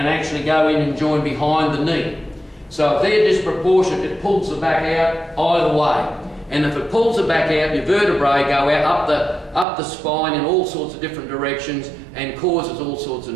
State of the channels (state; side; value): drops out; left; at 9.7 s